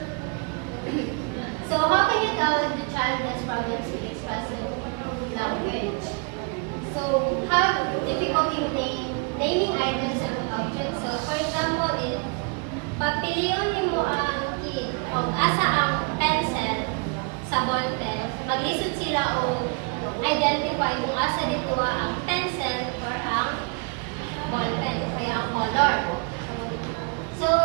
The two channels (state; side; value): quieter; left; 34.1 dB